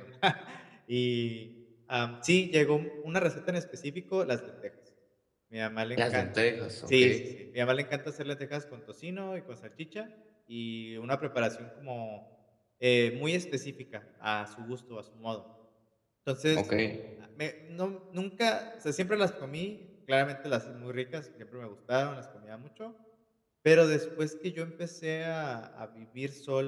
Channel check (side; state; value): both; identical; correlation 1.00